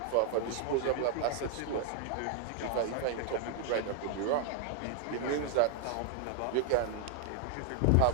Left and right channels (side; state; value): both; different; correlation 0.00